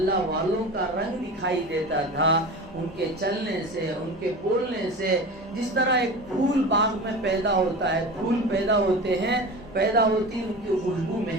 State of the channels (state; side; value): normal; both; correlation 0.31